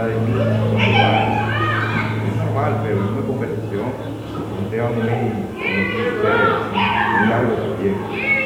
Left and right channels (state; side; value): identical; both; correlation 1.00